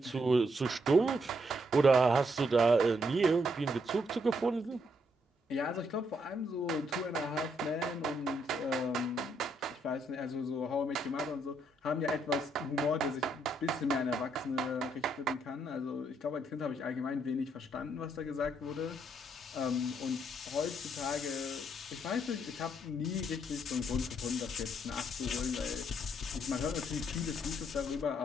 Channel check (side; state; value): both; normal; correlation 0.74